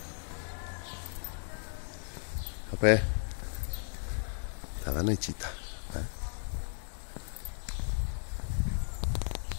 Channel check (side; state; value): right; silent; digital silence